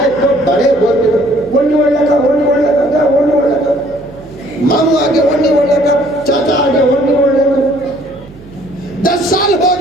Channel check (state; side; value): noise; right; hum, 21 dB below the sound